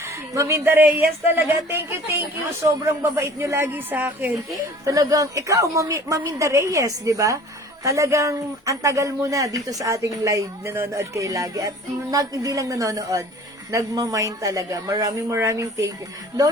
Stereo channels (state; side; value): normal; both; correlation 0.47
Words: Maminda Reyes talaga, thank you. Sobrang babait nyo lagi sa akin. Talagang, ikaw, Maminda Reyes, di ba? Talagang, ang tagal mo na dito sa ating live, nanonood kayo lagi. At hindi lang nanonood, nagmamind talaga. Maraming thank you.